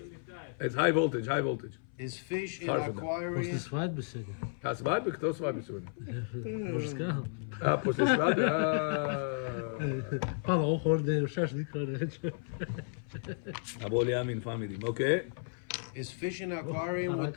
It's high voltage, high voltage. Is fish in Sorry for that. После aquarium? свадьбы сегодня. А свадьбы? Кто свадьбы сегодня? Уже сказал. После свадьбы? Папа, уходит, шашлык, короче. Аболи Амин family, okay? Is fish in aquarium with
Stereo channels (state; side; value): silent; right; 56 dB below the other